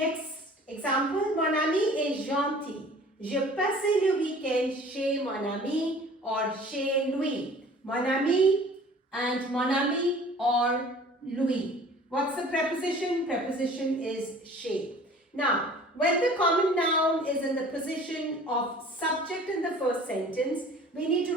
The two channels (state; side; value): normal; both; correlation 0.48